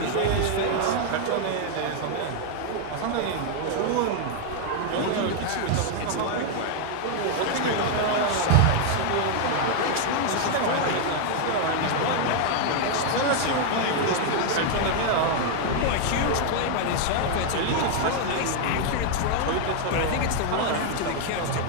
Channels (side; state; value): both; different; correlation 0.00